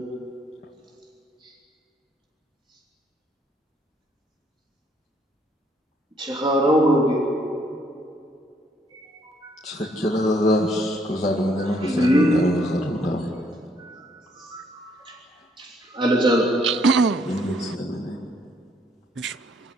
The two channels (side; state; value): both; normal; correlation 0.68